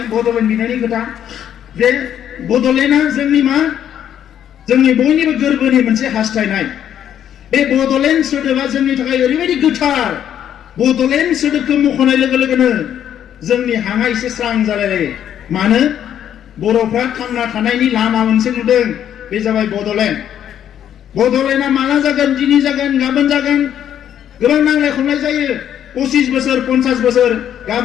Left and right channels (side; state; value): right; quieter; 10.0 dB